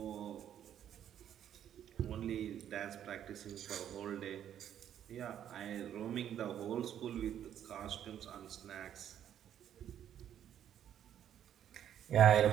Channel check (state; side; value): quieter; left; 10.1 dB